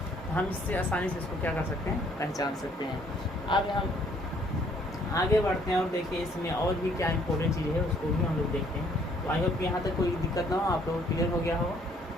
हम इससे आसानी से इसको क्या कर सकते हैं, पहचान सकते हैं। अब हम आगे बढ़ते हैं और देखिए इसमें और भी क्या इंपॉर्टेंट चीज़ है उसको भी हम लोग देखते हैं। तो आई होप यहाँ तक कोई दिक्कत ना हो, आप लोग क्लियर हो गया हो।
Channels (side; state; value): both; normal; correlation 0.63